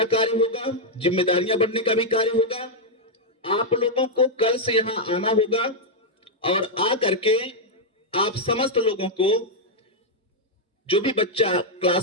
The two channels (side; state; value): both; normal; correlation -0.03